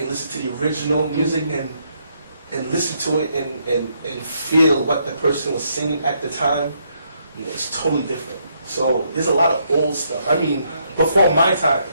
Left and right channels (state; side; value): inverted; both; correlation -0.74